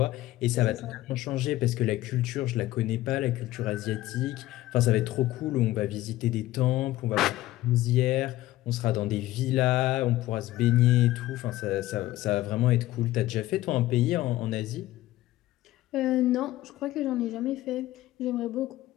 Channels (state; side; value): quieter; right; 16.0 dB